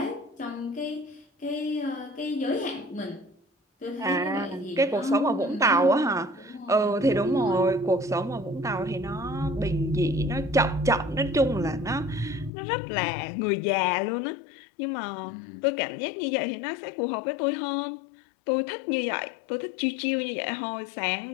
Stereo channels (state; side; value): drops out; right; at 12.5 s